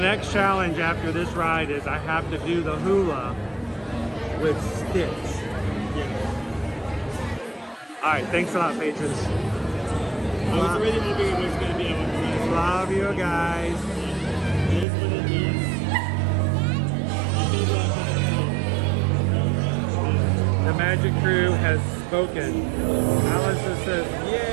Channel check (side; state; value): left; drops out; at 14.9 s